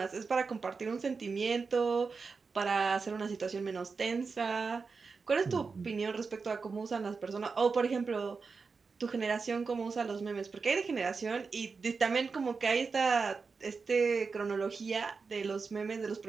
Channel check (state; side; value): quieter; left; 4.8 dB